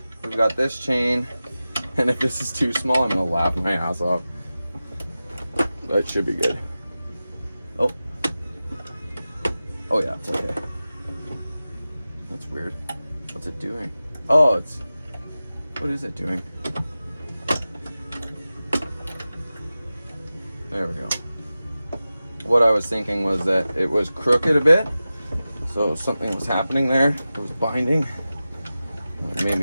we've got this chain, and if this is too small, I'm gonna laugh my ass off. That should be good. Oh. Oh yeah, it's okay. That's weird. What's it doing? Oh, it's, what is it doing? There we go. What I was thinking was that it was crooked a bit. So something was happening there. It was binding. It made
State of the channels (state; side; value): inverted; both; correlation -0.95